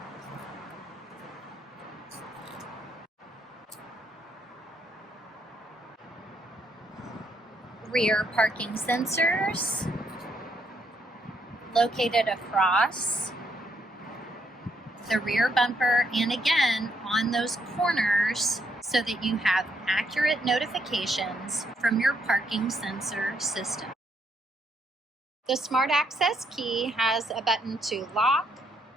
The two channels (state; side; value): normal; both; correlation 0.74